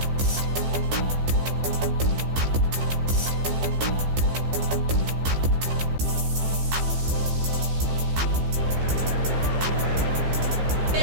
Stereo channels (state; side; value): late; left; 15 ms